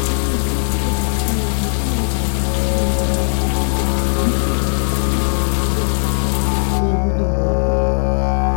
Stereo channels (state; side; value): silent; right; digital silence